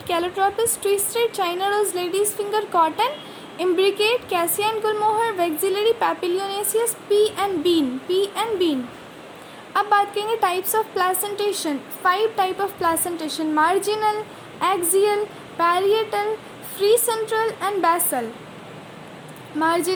Calotropis, twisted China rose, ladies finger cotton, imbricate cassia and gulmohar, vexillary papilionaceous, pea and bean, pea and bean. अब बात करेंगे types of placentation. 5 type of placentation, marginal, axial, parietal, free central and basal.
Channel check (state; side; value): identical; both; correlation 1.00